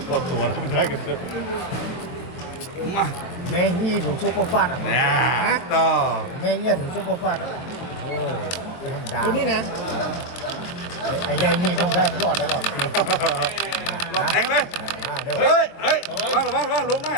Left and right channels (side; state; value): right; late; 23 ms